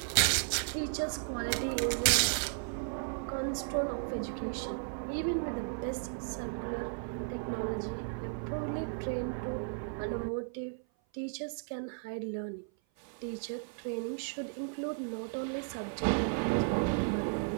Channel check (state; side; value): silent; left; 55 dB below the other